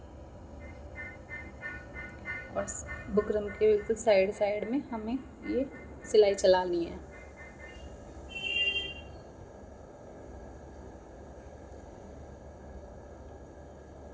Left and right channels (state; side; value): identical; both; correlation 1.00